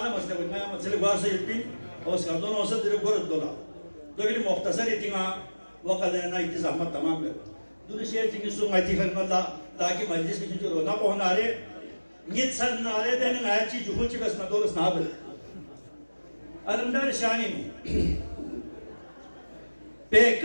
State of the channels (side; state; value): both; inverted; correlation -1.00